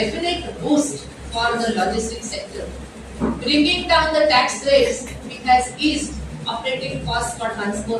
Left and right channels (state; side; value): identical; both; correlation 1.00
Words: boost for the logistics sector. Bringing down the tax rates, it has eased operating costs for